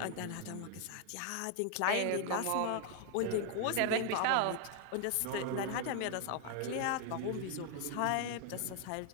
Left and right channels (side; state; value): both; different; correlation 0.00